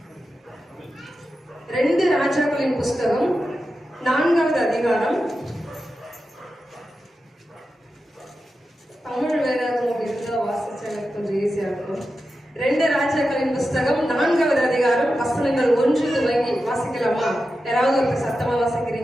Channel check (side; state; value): both; normal; correlation 0.91